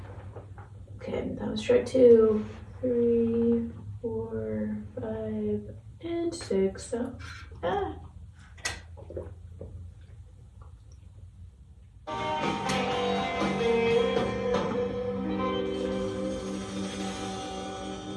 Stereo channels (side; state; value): both; identical; correlation 1.00